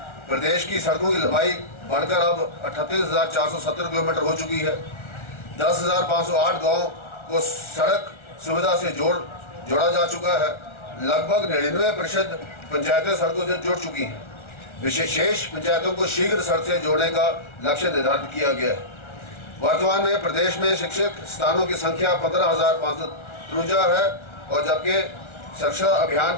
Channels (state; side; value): late; right; 1.4 ms